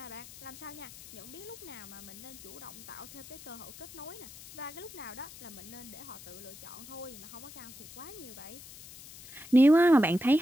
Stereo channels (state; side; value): noise; left; hiss, 16 dB below the sound